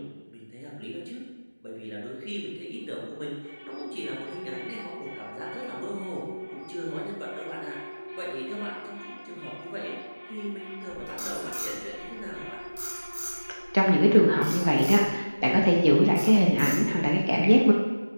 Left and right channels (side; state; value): both; inverted; correlation -1.00